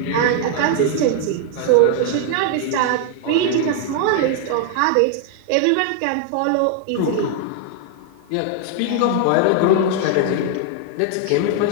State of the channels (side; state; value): both; different; correlation 0.00